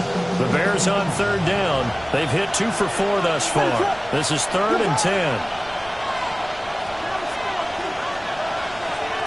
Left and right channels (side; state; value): right; noise; rumble, 22 dB below the sound